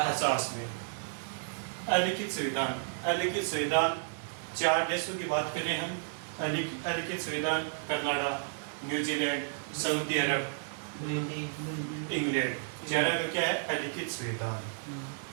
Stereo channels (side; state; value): left; silent; 56 dB below the other